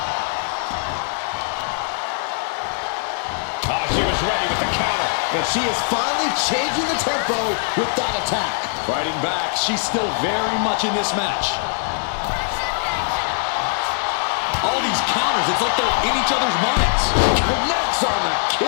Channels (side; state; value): right; silent; 65 dB below the other